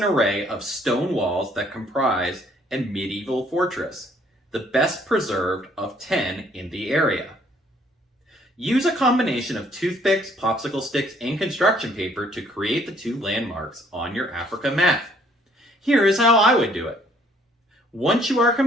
array of stone walls that comprise a medieval fortress, the best preserved of 10 in the area. Use a combination of toothpicks, popsicle sticks, and construction paper to create the 2 landmarks on your Africa map. Here is how I would do it. Once you are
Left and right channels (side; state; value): both; normal; correlation 0.63